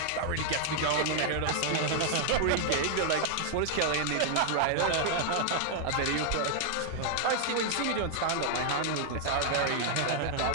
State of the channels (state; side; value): different; both; correlation 0.00